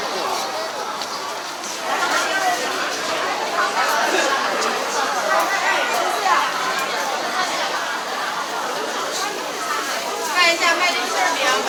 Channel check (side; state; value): both; identical; correlation 1.00